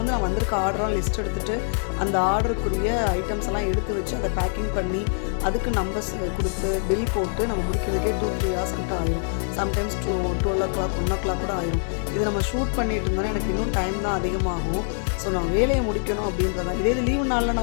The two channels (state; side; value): silent; right; 62 dB below the other